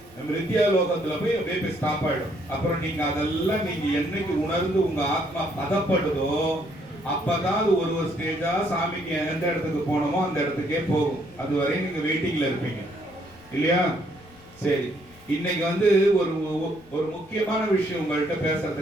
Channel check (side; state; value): left; noise; rumble, 25 dB below the sound